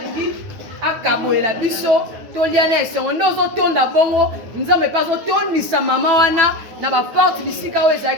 akaboyela biso tolia na esongo nde ozotonda bongo nzambe mpe azotondisa mama wana na baporte bisika oyo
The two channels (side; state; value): left; late; 9.4 ms